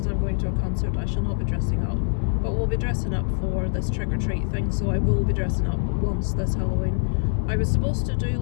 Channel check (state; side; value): silent; right; digital silence